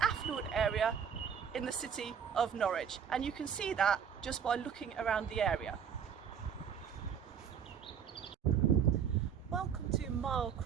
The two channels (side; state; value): left; quieter; 7.6 dB